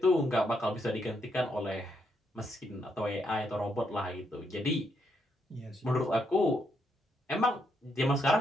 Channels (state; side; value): normal; both; correlation 0.77